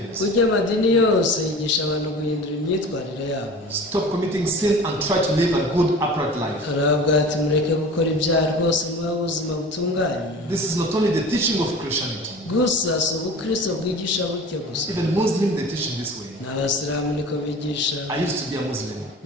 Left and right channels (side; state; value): both; normal; correlation 0.39